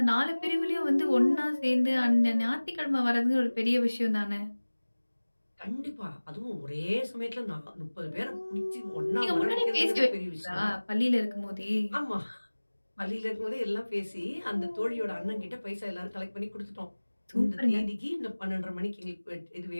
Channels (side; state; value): both; inverted; correlation -1.00